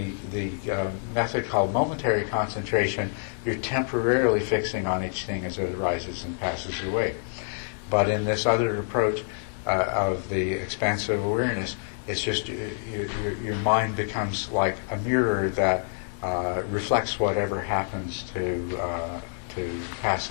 method called momentary concentration, you're temporarily fixing on each thing as it arises and passes away. But in this other approach of the expansive awareness, it's just your mind becomes like a mirror that reflects whatever happens to pass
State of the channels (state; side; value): silent; right; 57 dB below the other